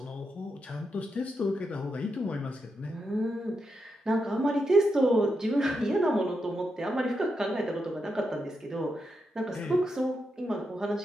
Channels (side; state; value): both; normal; correlation 0.85